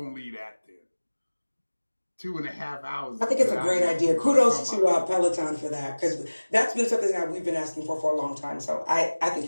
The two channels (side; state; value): both; inverted; correlation -1.00